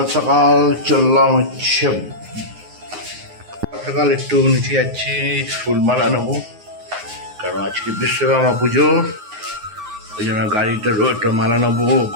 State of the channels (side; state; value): left; late; 9.6 ms